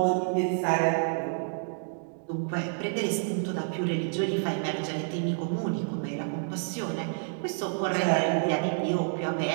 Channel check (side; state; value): left; silent; digital silence